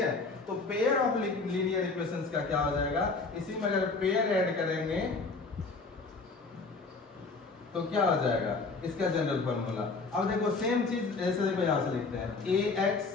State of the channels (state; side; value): quieter; right; 4.0 dB